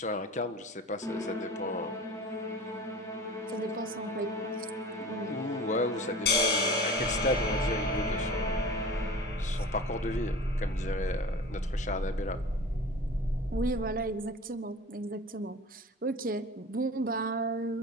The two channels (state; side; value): normal; both; correlation 0.38